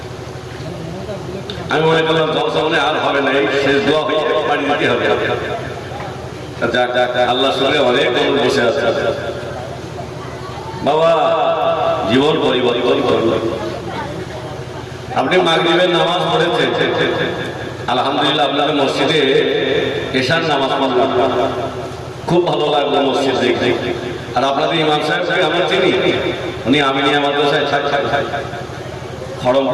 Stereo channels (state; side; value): identical; both; correlation 1.00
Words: আমি মনে করলাম জলসা মনে আর হবে না, এই শেষ দোয়া হয়ে বাড়ি দিতে হবে। আল্লাহ সঙ্গে অনেক মানুষ বসে আছে বাবা। জীবন পরিবর্তন করল। আপনি মাগরিবের নামাজ পড়েছেন, আলহামদুলিল্লাহ। আপনাদের মসজিদে এশার নামাজ পড়লাম, খুব ভালো লাগলো মসজিদ দেখে। আর আপনাদের ইমাম সাহেবকে আমরা চিনি, উনি আমিনিয়া মাদ্রাসায়